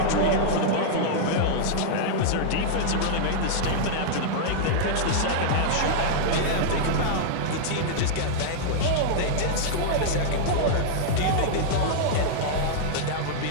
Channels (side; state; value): both; different; correlation -0.01